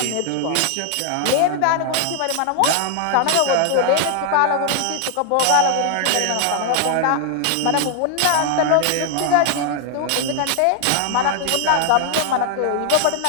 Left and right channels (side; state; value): both; different; correlation 0.00